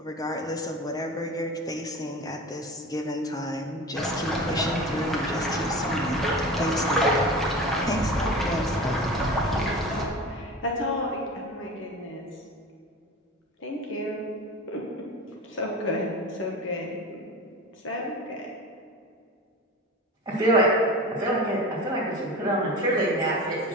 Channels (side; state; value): both; normal; correlation 0.32